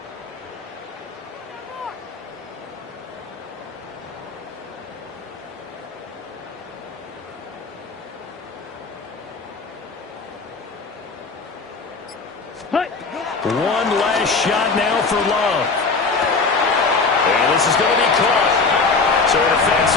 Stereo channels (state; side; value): quieter; right; 4.3 dB